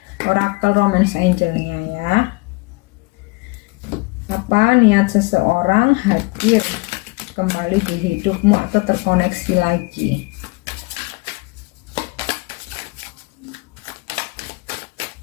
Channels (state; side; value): quieter; right; 26.7 dB